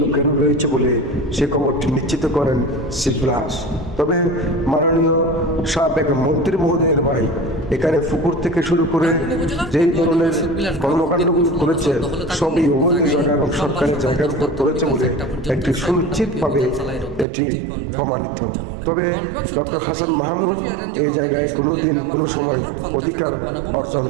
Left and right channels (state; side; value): drops out; left; at 17.2 s